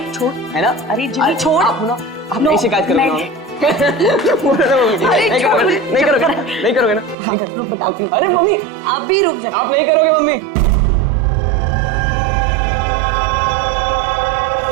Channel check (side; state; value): left; drops out; at 7.2 s